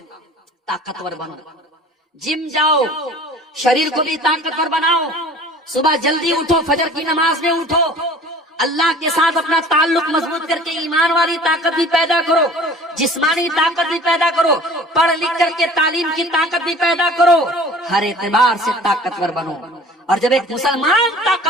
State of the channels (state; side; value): normal; both; correlation 0.46